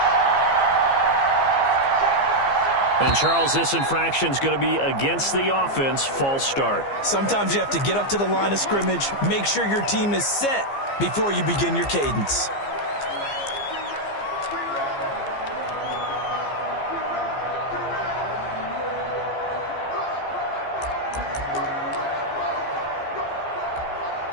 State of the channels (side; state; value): right; late; 15 ms